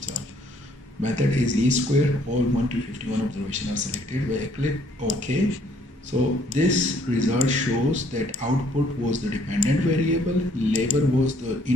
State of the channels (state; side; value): normal; both; correlation 0.64